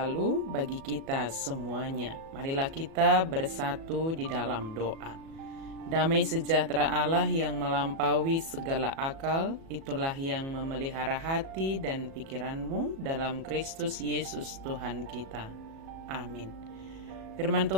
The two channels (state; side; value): late; left; 37 ms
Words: bagi kita semuanya. Marilah kita bersatu di dalam doa. Damai sejahtera Allah yang melampaui segala akal, itulah yang memelihara hati dan pikiranmu dalam Kristus Yesus Tuhan kita. Amin. Firman